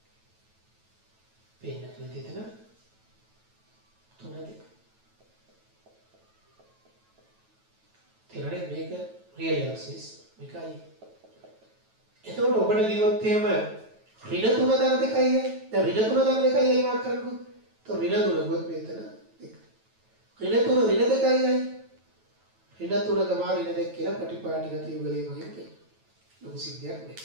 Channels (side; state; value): left; late; 9.2 ms